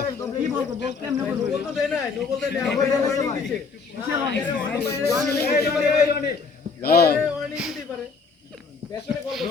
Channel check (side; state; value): right; quieter; 4.9 dB